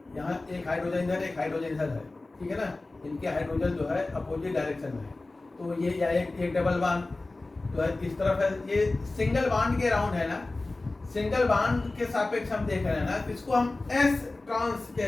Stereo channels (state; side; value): quieter; right; 3.1 dB